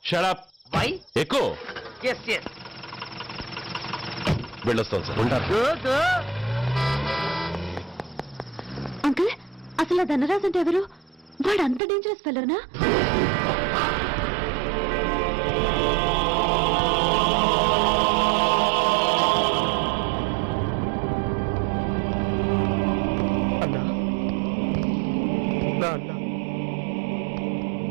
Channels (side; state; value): left; drops out; at 11.8 s